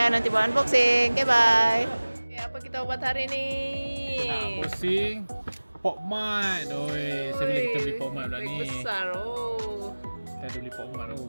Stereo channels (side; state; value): both; inverted; correlation -1.00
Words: nanti buat unboxing. Okay, bye. Okay, apa kita buat hari ni? Nak pusing Pokemon. Oi, saya bila kita beli Pokemon pula Bag ni. besar. Oh. Kita ada beli Pokemon.